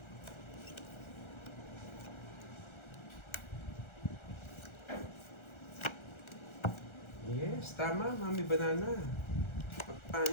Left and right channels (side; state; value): right; late; 1.4 ms